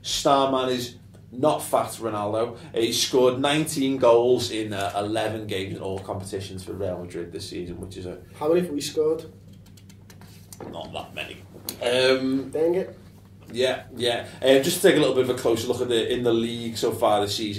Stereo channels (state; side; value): identical; both; correlation 1.00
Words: Star man is not fat Ronaldo. He scored 19 goals in 11 games in all competitions for Real Madrid this season, which is How many have we scored? Not that many. Dang it. Yeah. Just to take a little bit of a closer look at in the league so far this